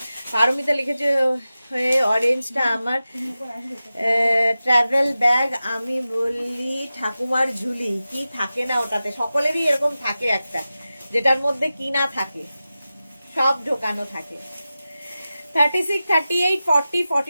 Paramita লিখেছে অরেঞ্জটা আমার ট্রাভেল ব্যাগ, আমি বলি ঠাকুমার ঝুলি। কি থাকে না ওটাতে, সকলেরই এরকম থাকে একটা, যেটার মধ্যে কি না থাকে, সব ঢোকানো থাকে। 36, 38, 40,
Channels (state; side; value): inverted; both; correlation -0.94